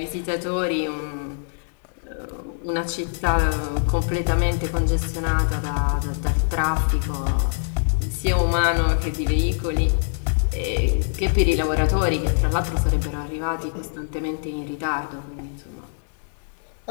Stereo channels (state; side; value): silent; right; 63 dB below the other